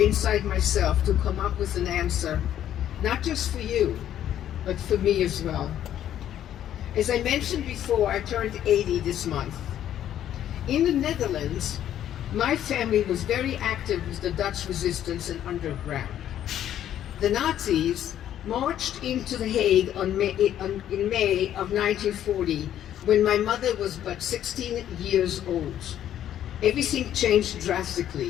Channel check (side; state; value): right; quieter; 11.0 dB